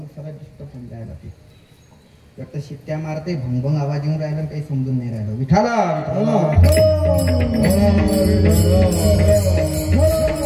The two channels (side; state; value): both; identical; correlation 1.00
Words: सरळ डिस्टर्ब होऊन जायला. ते फक्त शिट्ट्या मारते, भंगभंग आवाज येऊन राहिला, काही समजून नाही राहिलं. विठाला